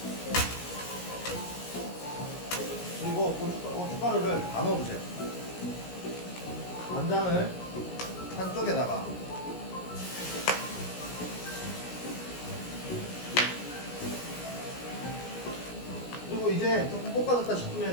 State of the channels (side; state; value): right; late; 17 ms